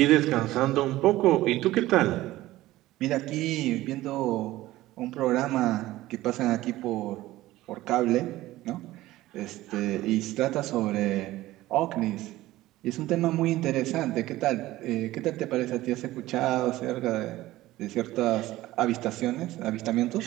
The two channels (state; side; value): quieter; left; 16.6 dB